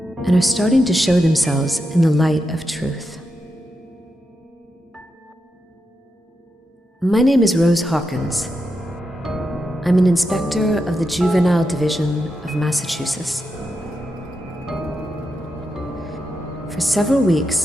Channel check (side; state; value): both; normal; correlation 0.86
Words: and are starting to show themselves in the light of truth. My name is Rose Hawkins. I'm an inspector of the Juvenile Division of Massachusetts. For several